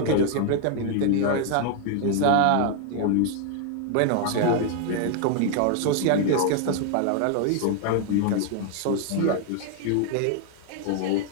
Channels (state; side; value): different; both; correlation 0.00